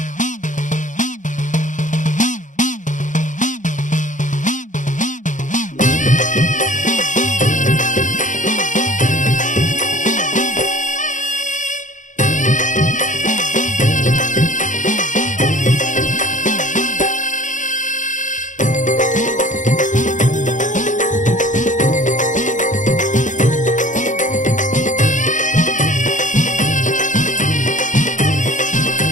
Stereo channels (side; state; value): right; late; 0.37 ms